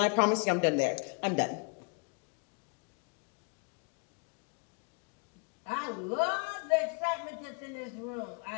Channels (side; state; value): right; quieter; 36.7 dB